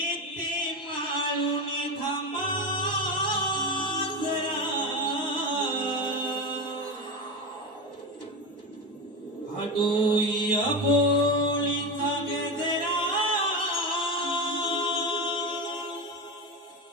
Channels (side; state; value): both; normal; correlation 0.19